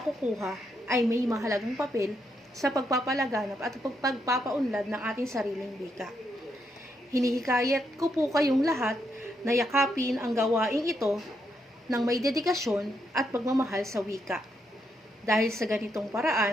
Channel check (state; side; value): normal; both; correlation 0.79